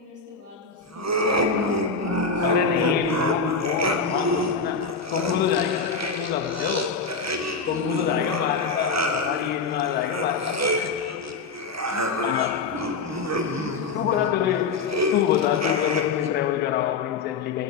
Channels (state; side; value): quieter; right; 4.7 dB